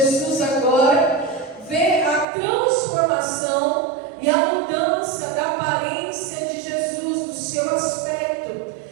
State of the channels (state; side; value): drops out; left; at 2.2 s